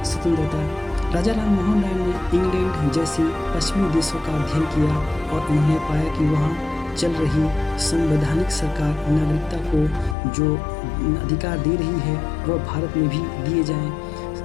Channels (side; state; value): right; drops out; at 10.2 s